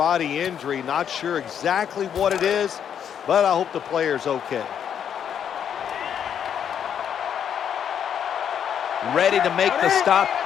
injury. Not sure exactly what it is, but I hope the player's okay. Ready to make the stop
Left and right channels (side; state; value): right; quieter; 8.6 dB